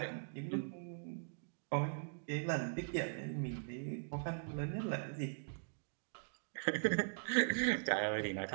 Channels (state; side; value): silent; left; digital silence